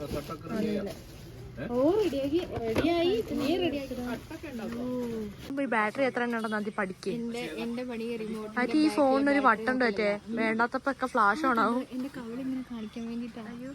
ഈ ബാറ്ററി എത്ര എണ്ണം ഉണ്ടെന്ന് ആദ്യം പഠിക്കേ. എന്റെ പണി റിമോട്ട്. അത് ഈ ഫോണിനൊരു ബട്ടൺ പറ്റേ, വേണ്ടാത്തപ്പോ ഒക്കെ ഫ്ലാഷ് ഓൺ ആവും. എന്റെ കവളിങ്ങനെ കാണിക്കാൻ വേണ്ടിട്ടാണ്.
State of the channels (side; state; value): both; identical; correlation 1.00